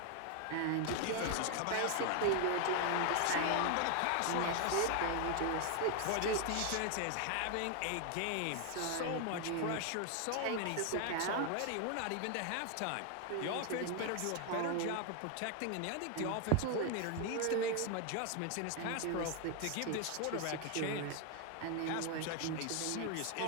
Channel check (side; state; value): both; different; correlation 0.01